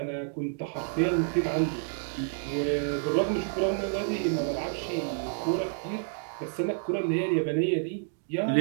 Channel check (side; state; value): left; silent; digital silence